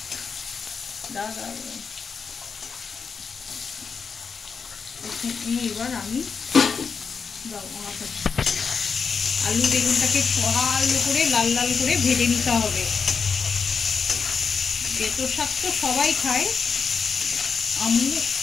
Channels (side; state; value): right; quieter; 5.6 dB